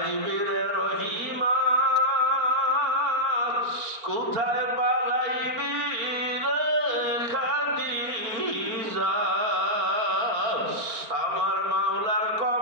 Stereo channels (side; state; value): left; late; 4.4 ms